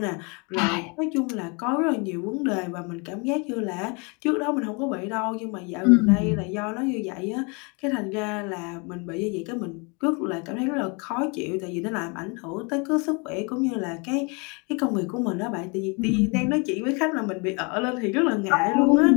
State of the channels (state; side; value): quieter; right; 31.9 dB